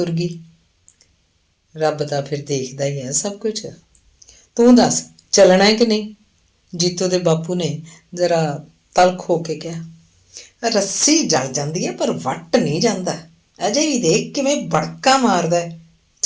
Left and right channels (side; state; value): both; identical; correlation 1.00